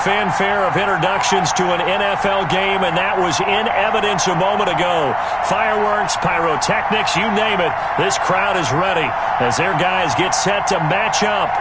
of introductions to an NFL game, and that was in evidence a moment ago. Fireworks, pyrotechnics, you name it. This crowd is ready as their guys get set to match up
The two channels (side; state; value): left; noise; rumble, 23 dB below the sound